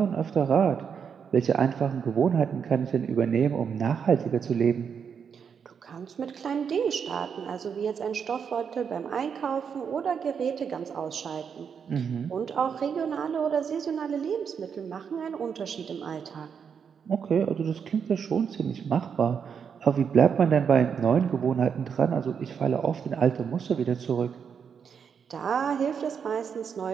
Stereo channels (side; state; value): left; quieter; 6.9 dB